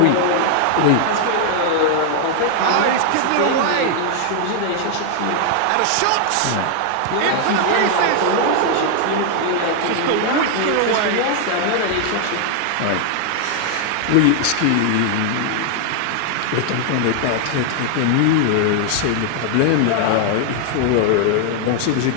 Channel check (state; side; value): different; both; correlation 0.00